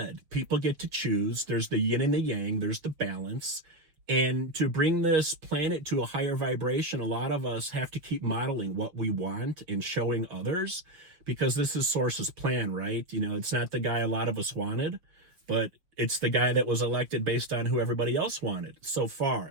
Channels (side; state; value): left; late; 6.5 ms